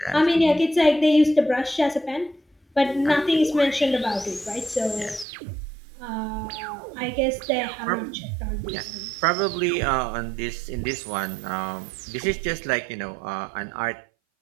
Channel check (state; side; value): drops out; left; at 5.2 s